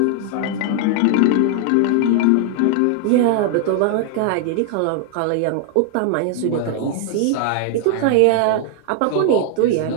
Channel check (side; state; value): both; different; correlation 0.00